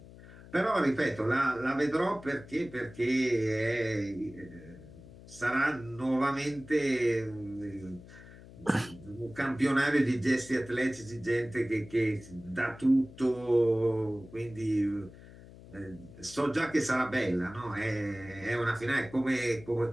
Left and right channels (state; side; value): noise; left; hum, 18 dB below the sound